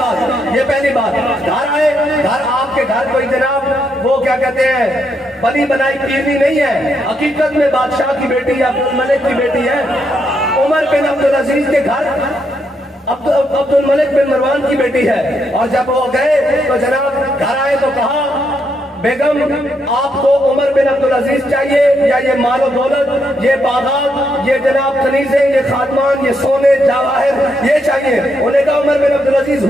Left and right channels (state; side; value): normal; both; correlation 0.78